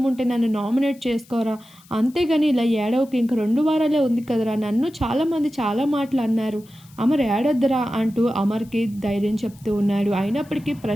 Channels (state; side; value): noise; left; hiss, 27 dB below the sound